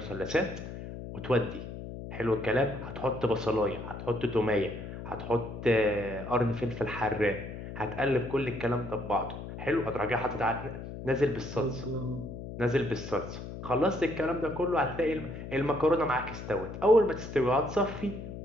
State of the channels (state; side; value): noise; left; hum, 9 dB below the sound